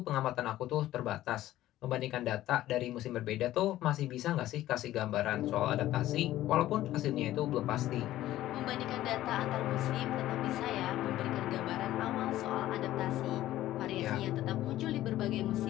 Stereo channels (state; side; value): quieter; right; 14.4 dB